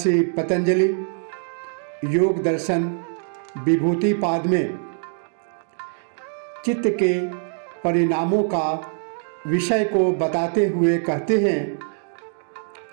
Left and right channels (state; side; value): silent; left; 61 dB below the other